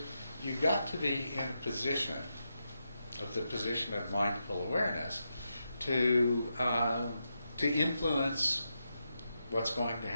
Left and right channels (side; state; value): both; inverted; correlation -0.85